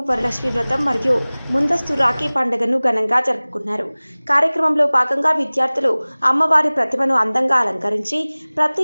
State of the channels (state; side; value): inverted; both; correlation -1.00